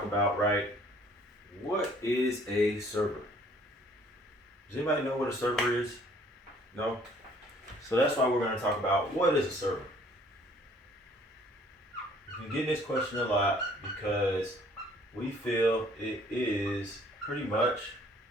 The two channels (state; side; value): normal; both; correlation 0.58